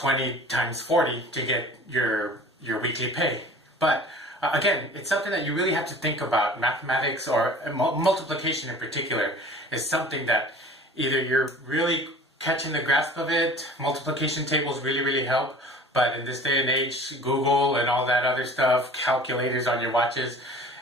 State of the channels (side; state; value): both; normal; correlation 0.44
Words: times 40 to get your weekly pay. But again, it's something that you really have to think about. Mathematics, or multiplication in particular, is something that either you're really catching the grasp of it. Multiplication tables really help, but in this day and age, Google and all that other stuff, calculators on your watches,